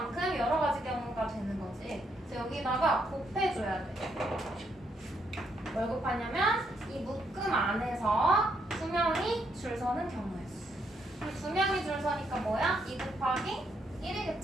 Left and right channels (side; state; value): both; normal; correlation 0.75